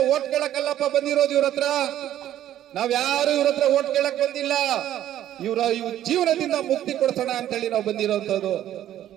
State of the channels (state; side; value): quieter; left; 12.1 dB